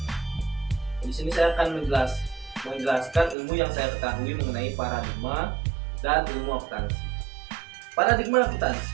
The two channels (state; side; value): drops out; left; at 3.4 s